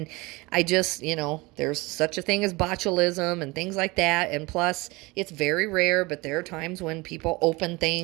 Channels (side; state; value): left; quieter; 23.6 dB